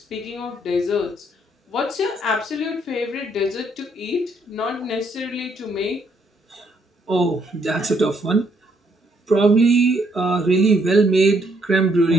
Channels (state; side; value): normal; both; correlation 0.71